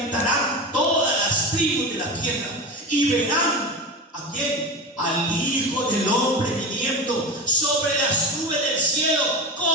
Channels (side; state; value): both; normal; correlation 0.24